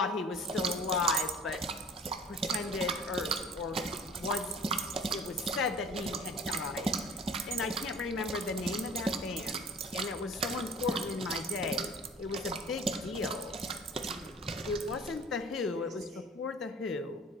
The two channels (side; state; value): both; normal; correlation 0.46